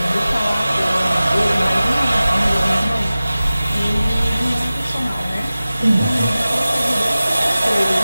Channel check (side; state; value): both; inverted; correlation -0.96